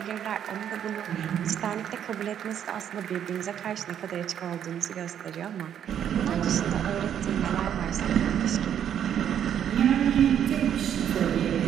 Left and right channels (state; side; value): quieter; left; 9.4 dB